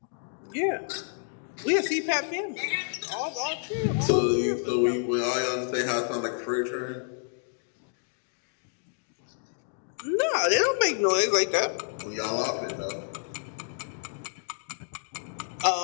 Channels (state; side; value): silent; right; digital silence